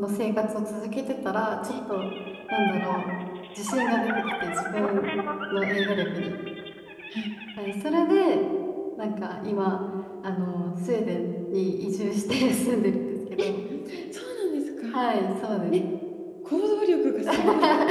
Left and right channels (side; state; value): both; identical; correlation 1.00